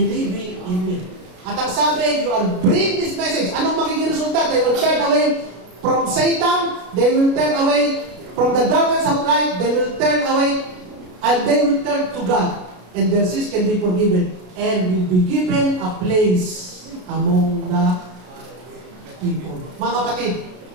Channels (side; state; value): left; late; 33 ms